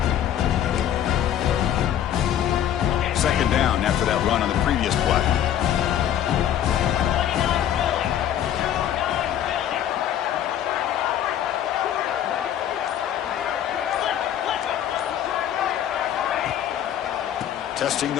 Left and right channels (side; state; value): right; quieter; 10.5 dB